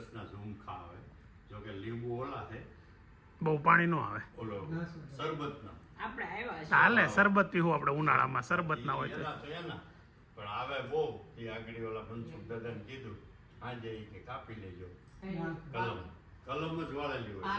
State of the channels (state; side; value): identical; both; correlation 1.00